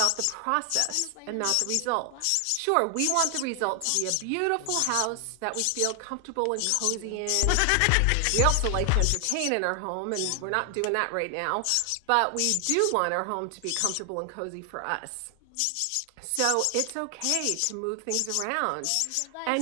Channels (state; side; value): different; both; correlation 0.00